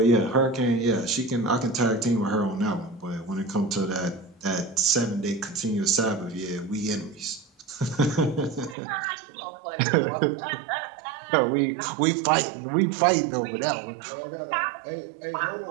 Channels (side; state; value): left; drops out; at 8.8 s